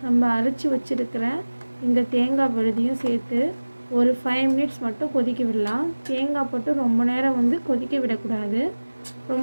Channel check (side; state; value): both; inverted; correlation -1.00